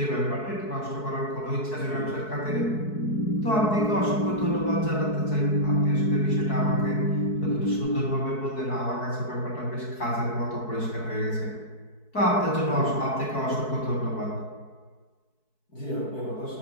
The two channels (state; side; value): late; right; 4.6 ms